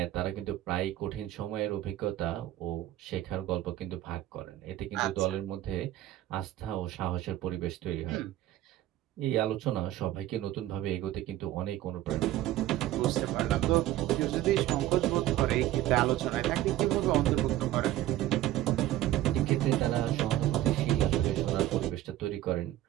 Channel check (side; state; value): left; quieter; 14.3 dB